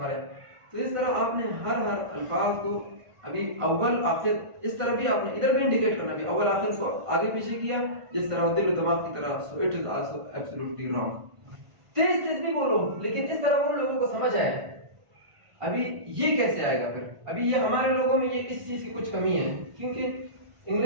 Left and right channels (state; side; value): late; left; 1.5 ms